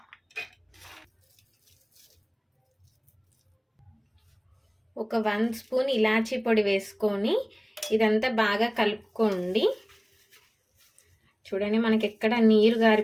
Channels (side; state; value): both; identical; correlation 1.00